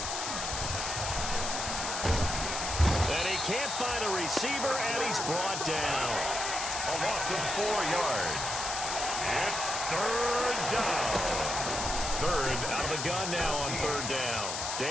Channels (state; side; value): noise; left; hiss, 3 dB below the sound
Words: Can't find a receiver, and he's brought down. A loss of 4 yards. It's 3rd down. 3rd out of the gun now on 3rd down.